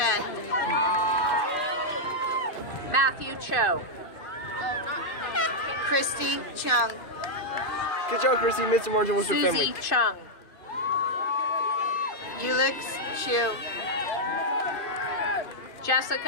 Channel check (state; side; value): late; right; 2.5 ms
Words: Matthew Cho. Christy Chung. Good job, Chrissy. Mr. Martin was your Susie family. Chung. Ulix Chu.